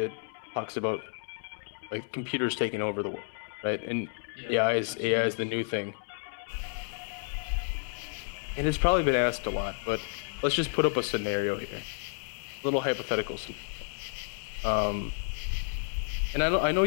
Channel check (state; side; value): silent; right; digital silence